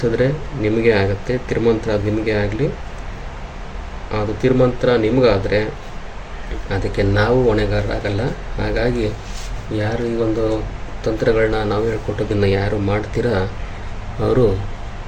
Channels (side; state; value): both; identical; correlation 1.00